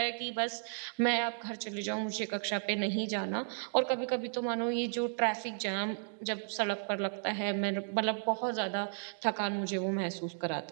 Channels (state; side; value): silent; left; digital silence